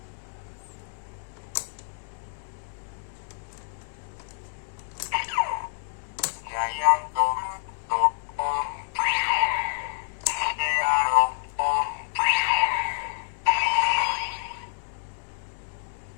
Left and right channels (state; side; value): silent; right; 60 dB below the other